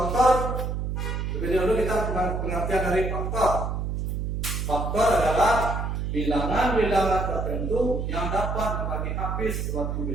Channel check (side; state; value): right; noise; hum, 2 dB below the sound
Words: Lebih dahulu kita pengertian dari faktor. Faktor adalah bilangan-bilangan tertentu yang dapat membagi habis suatu